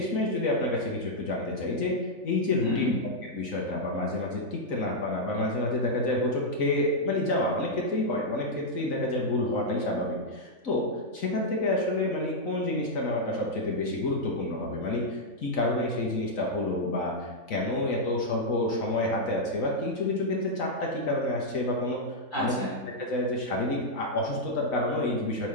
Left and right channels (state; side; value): late; right; 3.9 ms